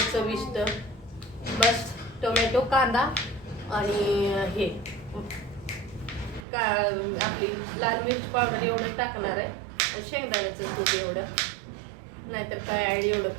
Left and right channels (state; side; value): drops out; left; at 6.5 s